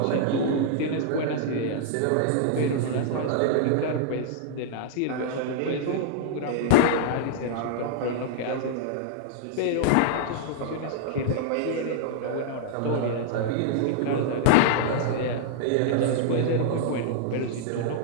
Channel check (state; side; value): different; both; correlation -0.01